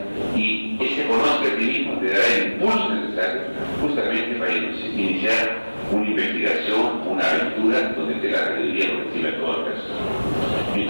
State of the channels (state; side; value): inverted; both; correlation -1.00